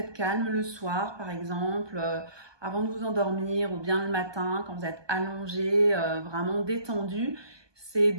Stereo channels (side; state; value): left; late; 1.2 ms